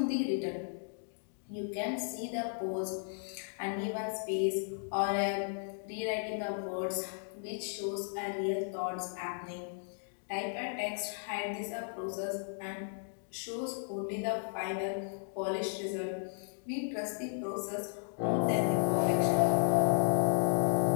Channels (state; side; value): silent; right; digital silence